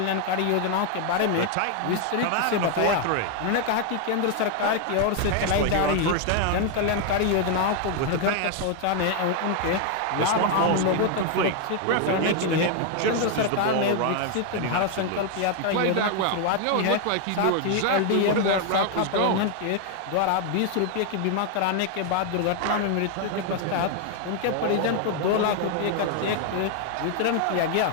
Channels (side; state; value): both; different; correlation 0.00